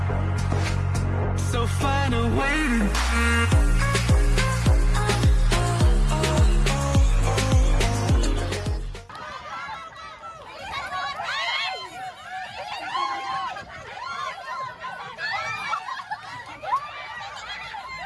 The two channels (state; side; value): identical; both; correlation 1.00